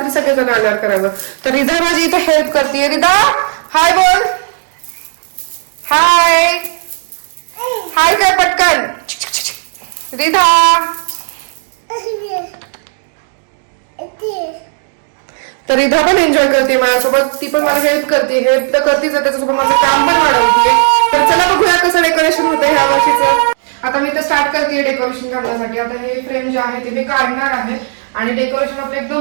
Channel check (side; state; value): left; silent; digital silence